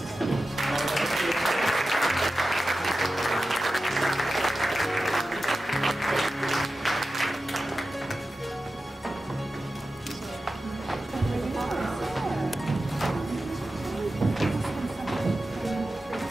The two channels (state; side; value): normal; both; correlation 0.93